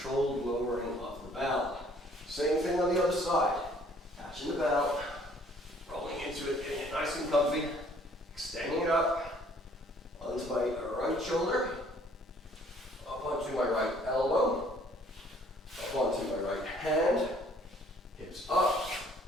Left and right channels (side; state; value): both; normal; correlation 0.59